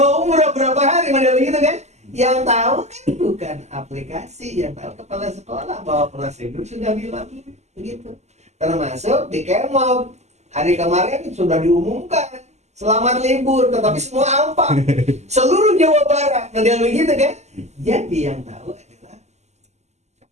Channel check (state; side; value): late; left; 0.33 ms